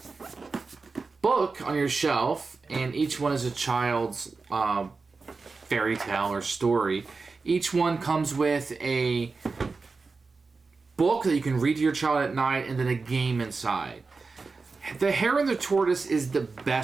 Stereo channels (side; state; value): left; quieter; 4.2 dB